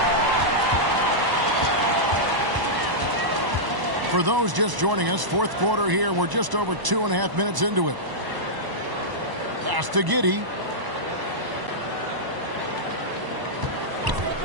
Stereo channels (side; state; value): left; late; 1.0 ms